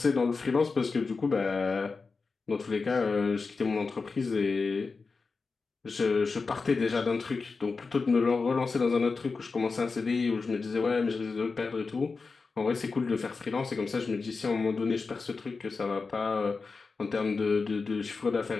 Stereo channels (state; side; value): quieter; right; 4.4 dB